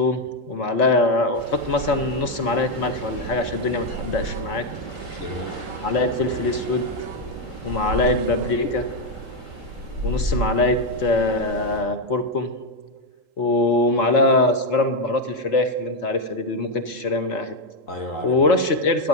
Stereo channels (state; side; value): late; right; 4.4 ms